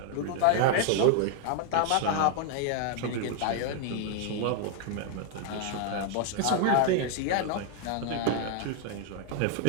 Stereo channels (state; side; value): different; both; correlation 0.00